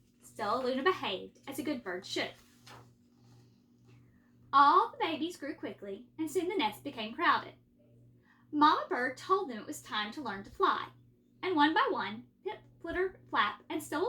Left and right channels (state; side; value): identical; both; correlation 1.00